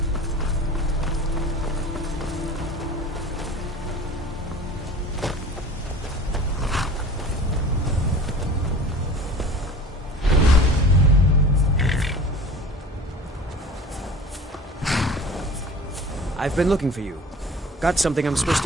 I've been looking for you. Got something I'm supposed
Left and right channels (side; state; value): both; normal; correlation 0.40